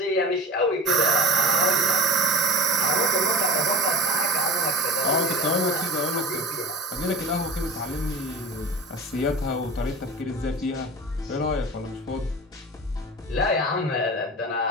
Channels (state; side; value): normal; both; correlation 0.35